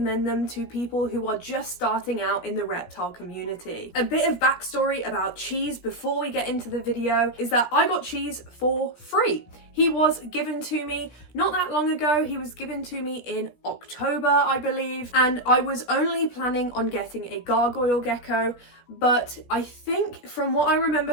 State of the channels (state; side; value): late; right; 17 ms